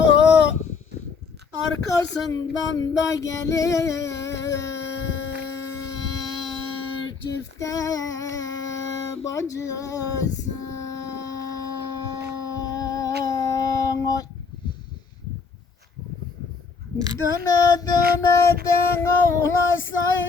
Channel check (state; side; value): quieter; right; 5.2 dB